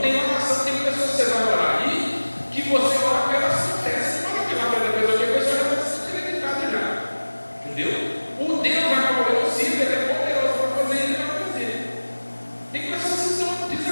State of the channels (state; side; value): inverted; both; correlation -1.00